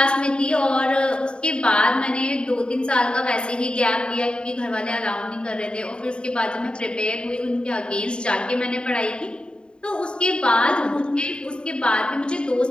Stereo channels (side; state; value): right; late; 0.051 ms